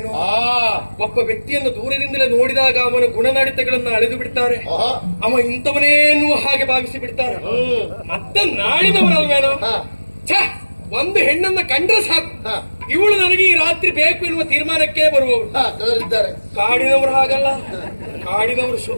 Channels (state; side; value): inverted; both; correlation -1.00